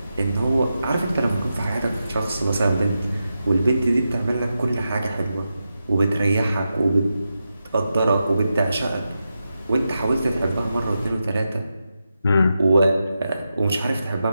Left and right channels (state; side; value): inverted; both; correlation -0.89